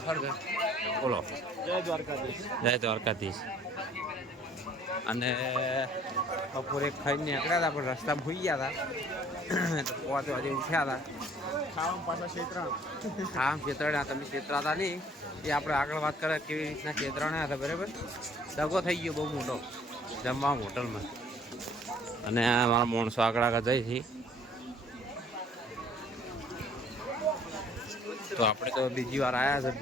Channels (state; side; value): normal; both; correlation 0.56